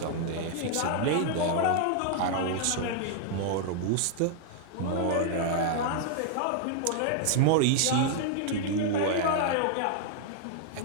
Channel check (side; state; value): both; different; correlation 0.00